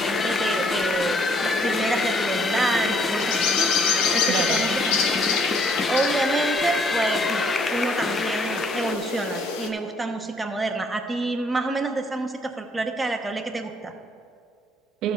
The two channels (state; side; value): normal; both; correlation 0.64